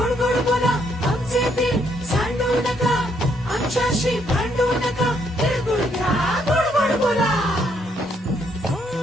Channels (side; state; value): both; normal; correlation 0.72